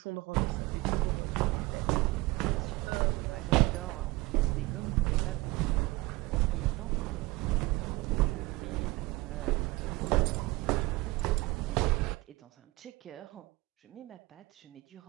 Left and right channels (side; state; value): left; quieter; 21.5 dB